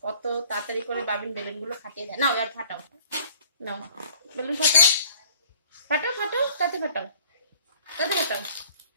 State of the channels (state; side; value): inverted; both; correlation -0.53